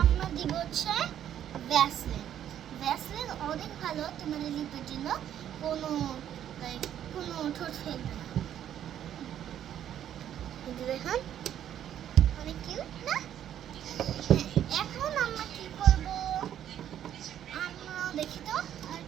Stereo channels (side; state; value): left; quieter; 10.5 dB